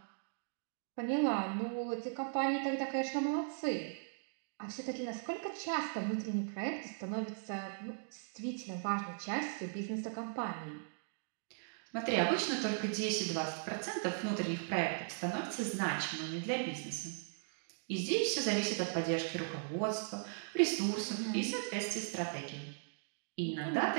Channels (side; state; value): left; silent; digital silence